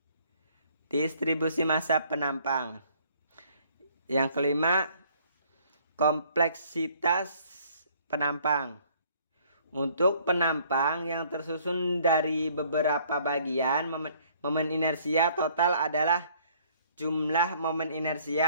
penampang. Yang kelima, kompleksitas penampang. Untuk penampang yang tersusun dari beberapa bagian, momen inersia total adalah jumlah momen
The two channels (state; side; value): inverted; both; correlation -0.60